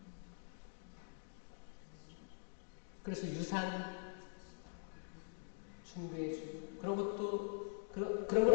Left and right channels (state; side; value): silent; right; digital silence